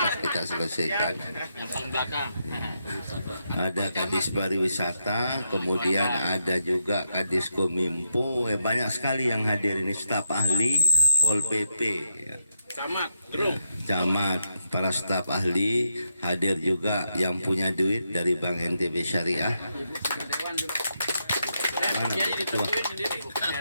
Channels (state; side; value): inverted; both; correlation -0.84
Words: kita selesaikan. Ada Kadis Pariwisata, kemudian ada juga Kadis Kominfo, banyak sekali yang hadir ini, staf ahli Pol PP, ya. Camat, para staf ahli hadir juga, yang punya duit dari Bank NTB Syariah. Mana begitu?